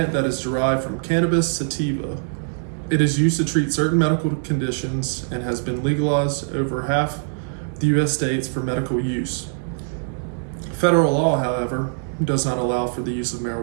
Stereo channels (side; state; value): left; silent; 61 dB below the other